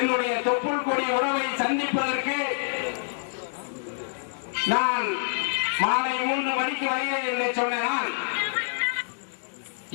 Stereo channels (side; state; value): right; silent; digital silence